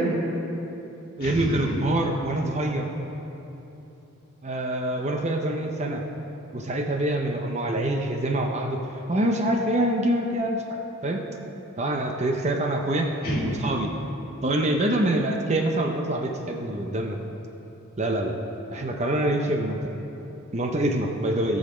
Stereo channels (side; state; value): both; normal; correlation 0.50